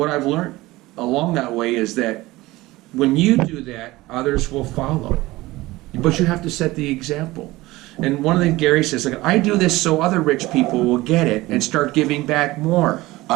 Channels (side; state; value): left; quieter; 19.2 dB